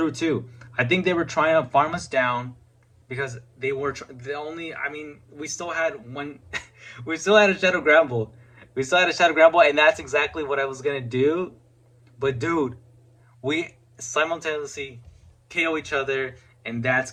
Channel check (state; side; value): identical; both; correlation 1.00